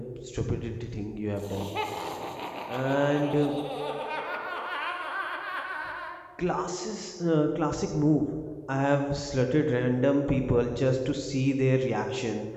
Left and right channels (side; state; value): both; identical; correlation 1.00